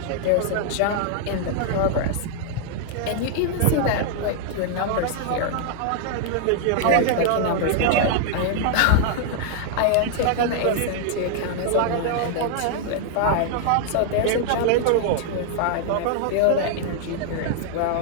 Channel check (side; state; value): both; different; correlation -0.01